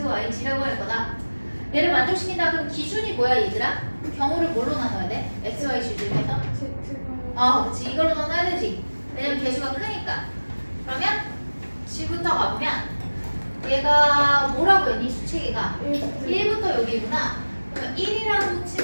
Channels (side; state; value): both; inverted; correlation -1.00